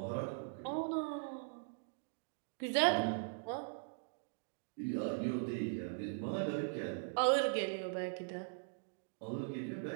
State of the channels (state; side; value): silent; left; digital silence